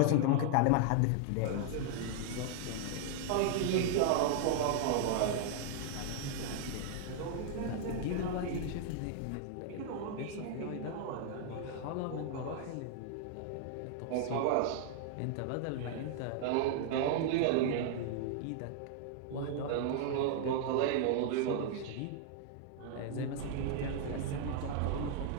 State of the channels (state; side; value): different; both; correlation 0.00